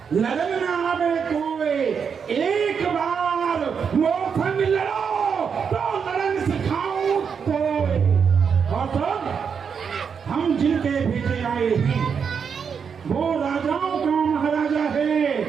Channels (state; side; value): quieter; left; 6.6 dB